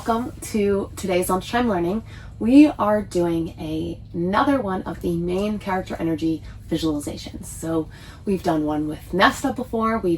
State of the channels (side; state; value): both; identical; correlation 1.00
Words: to today's lunchtime learning. We are doing another one of the main character energy visualizations. So we've done one with Nesta before,